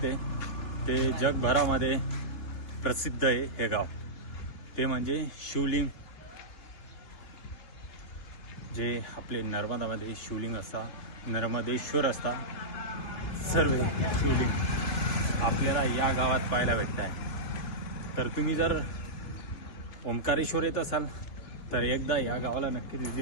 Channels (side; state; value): right; late; 3.5 ms